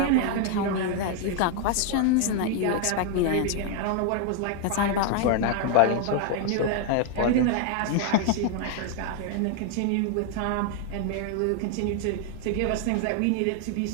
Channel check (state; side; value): different; both; correlation 0.00